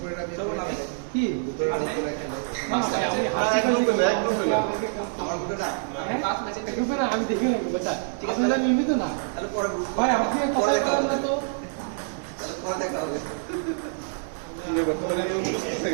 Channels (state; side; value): silent; left; digital silence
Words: করে আমি কি দুপুরে খেলে না, না, ভাই, আমি হাসি এক গ্রুপে না, পাইছি। এক গ্রুপে না। আমার গুলো না হ্যাঁ? পাঁচ ম্যাচে গ্রুপে না, আমি দেখি না বুঝা ঠিক আছে। আসলে আমি নিয়মিত না তাহলে পরে গ্রুপ ভাই আপনি কথা বলেন না তো তাহলে পরে দেখা হবে বর্তমানে সুস্থ